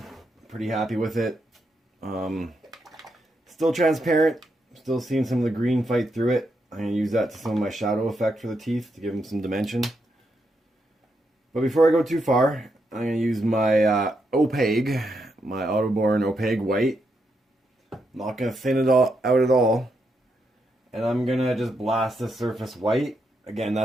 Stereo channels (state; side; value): normal; both; correlation 0.81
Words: pretty happy with it. Still transparent, still seeing some of the green fight through it. I'm going to use that to some of my shadow effect for the teeth to give them some dimension. But before I go too far, I'm going to use my opaque, my Autoborn opaque white. I'm not going to thin it all out at all. And I'm going to just blast the surface white. Again,